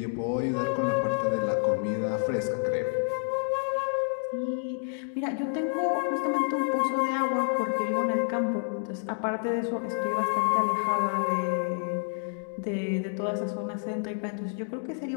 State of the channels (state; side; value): silent; right; digital silence